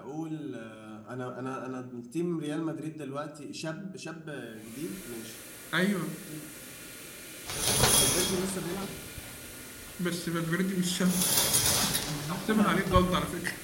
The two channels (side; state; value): both; identical; correlation 1.00